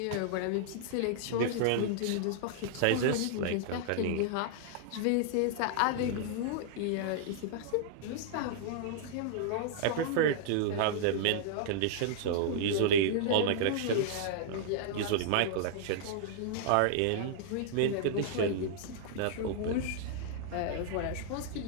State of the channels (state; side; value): different; both; correlation -0.01